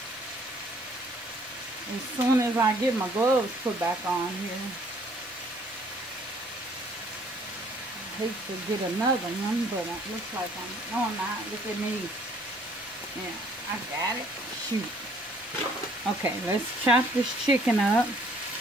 As soon as I get my gloves put back on here. I hate to get another one, but it looks like no, I'm not. Look at me. Yeah, I got it. Shoot. Okay, let's chop this chicken up.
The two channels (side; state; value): both; normal; correlation 0.60